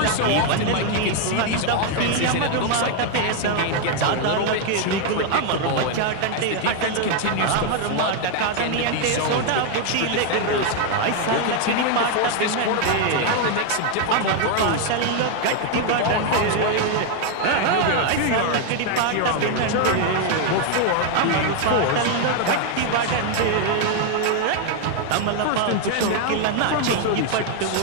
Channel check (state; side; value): different; both; correlation 0.01